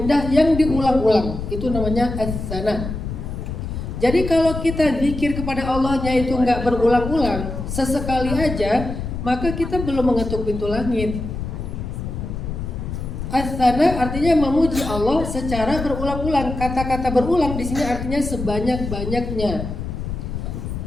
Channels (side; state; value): left; noise; rumble, 6 dB below the sound